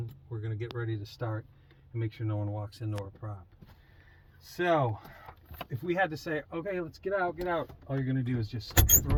we're going to get ready to start and make sure no one walks into our prop. So if we had to say, okay, let's get out, all you're going to do is just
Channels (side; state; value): both; identical; correlation 1.00